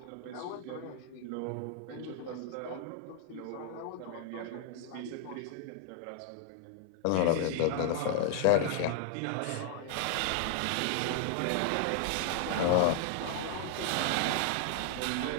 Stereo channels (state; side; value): different; both; correlation 0.00